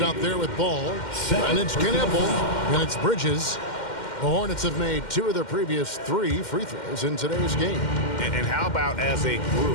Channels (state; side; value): late; right; 2.1 ms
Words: out there with ball. And it's Knippel. And it's Bridges. The Hornets have made 2 of their previous 3 free throws in today's game. And how about as a